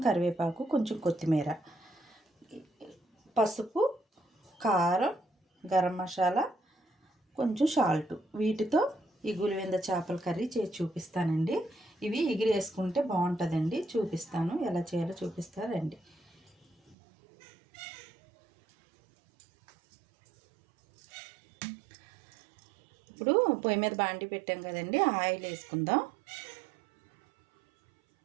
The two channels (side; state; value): left; drops out; at 16.9 s